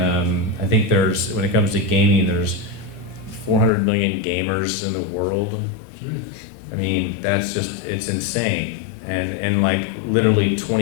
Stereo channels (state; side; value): drops out; right; at 3.7 s